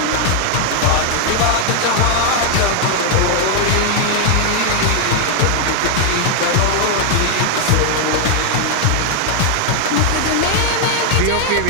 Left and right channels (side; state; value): both; different; correlation 0.00